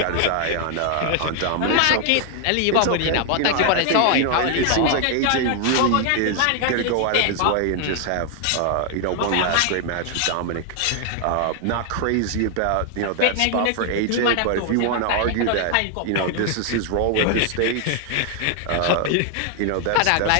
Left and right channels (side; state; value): both; different; correlation 0.00